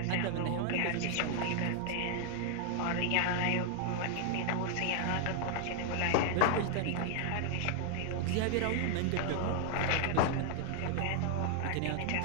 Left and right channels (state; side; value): different; both; correlation 0.00